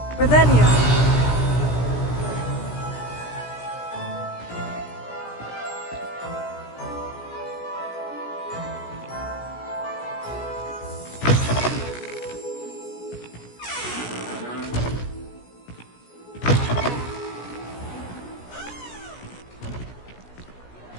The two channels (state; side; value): late; right; 17 ms